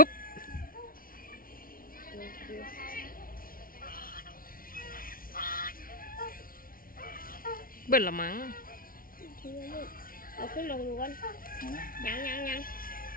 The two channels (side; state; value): right; late; 0.42 ms